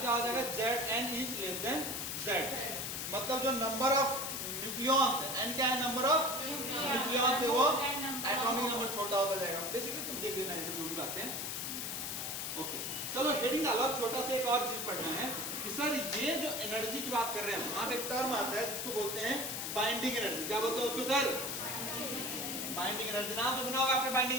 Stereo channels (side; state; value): left; noise; hiss, 3 dB below the sound